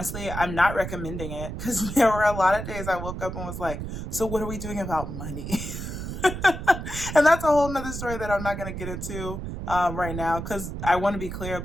I'm not recommending it because there were a lot of days I woke up and was like, so what are we doing about money? And that's a whole nother story that I'm not going to get into right now because I want to be clear,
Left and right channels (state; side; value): noise; right; rumble, 7 dB below the sound